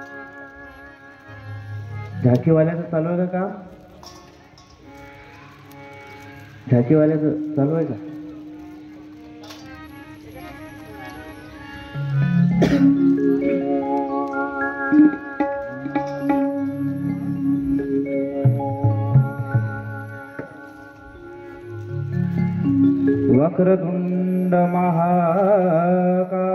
झांकी वाल्याचं चालू आहे का काम? झांकी वाल्याचं चालू आहे का? वक्रतुंड महाकाय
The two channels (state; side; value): identical; both; correlation 1.00